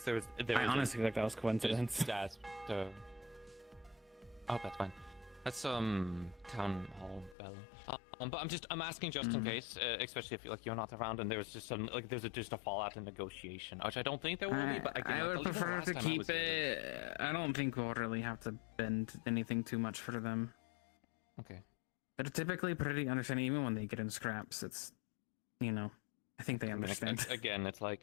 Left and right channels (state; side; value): drops out; right; at 7.4 s